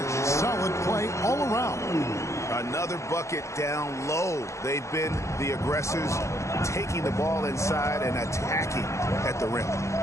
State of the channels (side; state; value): right; late; 0.14 ms